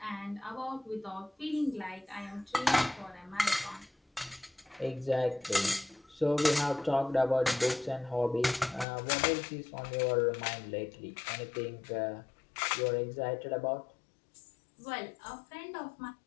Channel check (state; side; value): drops out; right; at 8.8 s